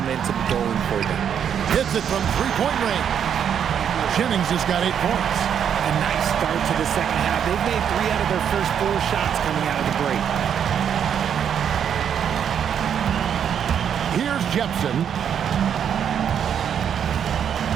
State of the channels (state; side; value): quieter; left; 8.4 dB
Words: going for them. Hits it from 3-point range. Jennings has got 8 points. A nice start to the second half. They've made 3 out of their first 4 shots coming out of the break. Here's Jepson.